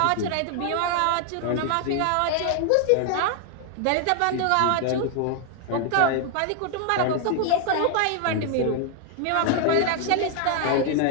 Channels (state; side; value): different; both; correlation 0.00